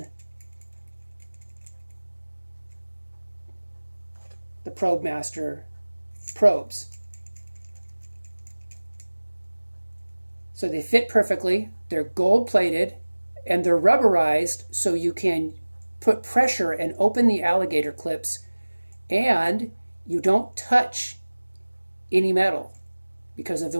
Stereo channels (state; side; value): inverted; both; correlation -1.00